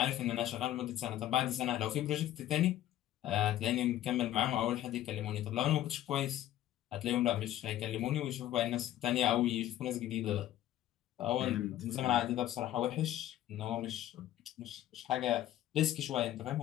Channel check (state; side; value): quieter; right; 13.0 dB